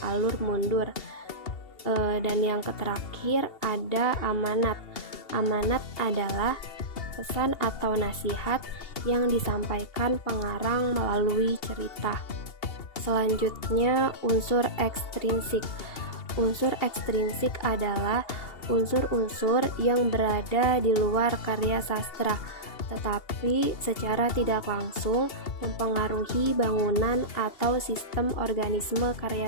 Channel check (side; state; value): right; late; 2.8 ms